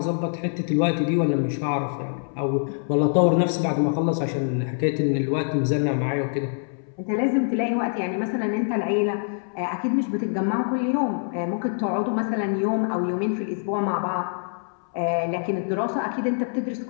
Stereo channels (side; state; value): right; silent; 62 dB below the other